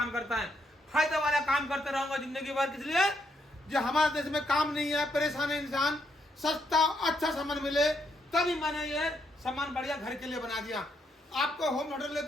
करता है। फायदे वाला काम करते रहूंगा जिंदगी भर। इसलिए जो हमारे देश में काम नहीं है, परेशान है इंसान, सस्ता अच्छा सामान मिले, तभी मैंने ये सामान बढ़िया घर के लिए बना दिया। आपको होम ऑर्डर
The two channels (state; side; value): normal; both; correlation 0.77